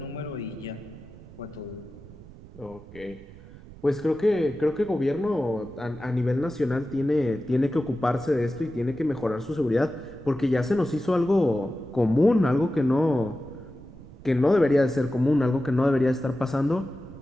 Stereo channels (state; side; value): noise; right; rumble, 19 dB below the sound